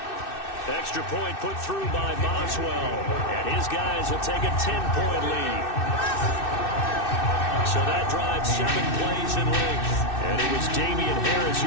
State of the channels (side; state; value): right; late; 2.6 ms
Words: Extra point put through by Boswell, and his guys will take a 10-point lead. So that drives 7 plays in length. And it was Damian Harris